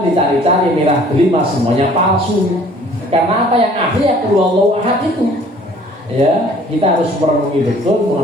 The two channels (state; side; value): normal; both; correlation 0.54